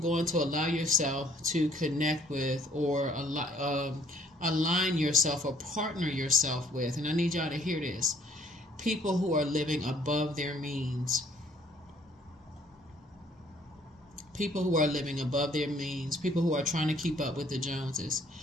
to allow yourself to connect with or align yourself or partner yourself with. And I need y'all to hear this: people who are living above their means. People who are living above their means, people who are trying to keep up with the Joneses,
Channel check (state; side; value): normal; both; correlation 0.61